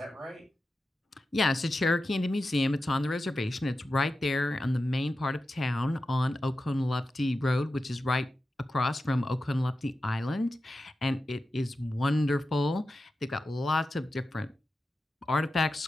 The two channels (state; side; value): normal; both; correlation 0.92